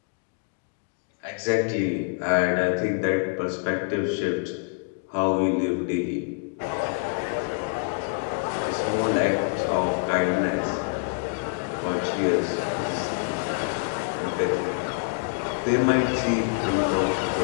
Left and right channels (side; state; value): right; quieter; 39.3 dB